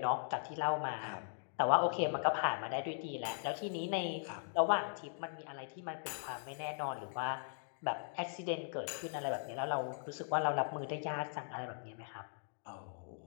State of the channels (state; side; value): silent; right; digital silence